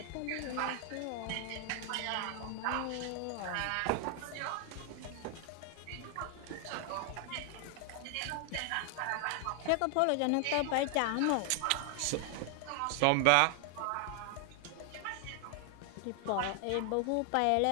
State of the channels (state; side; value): different; both; correlation 0.00